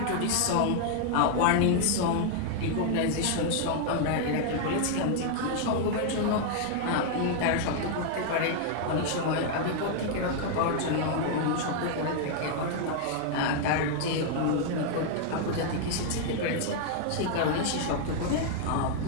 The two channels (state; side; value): different; both; correlation 0.00